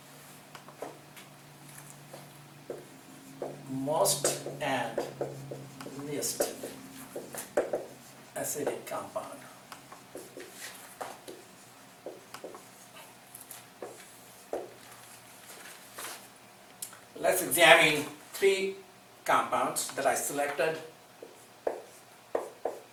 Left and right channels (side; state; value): both; identical; correlation 1.00